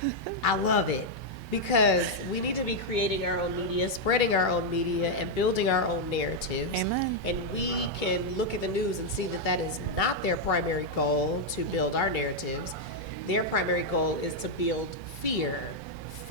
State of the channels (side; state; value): both; normal; correlation -0.01